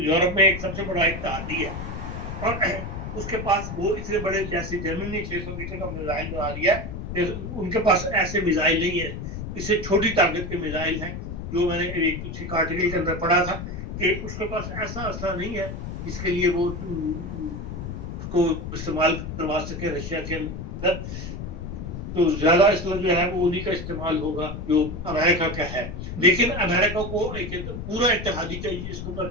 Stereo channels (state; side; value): noise; left; rumble, 7 dB below the sound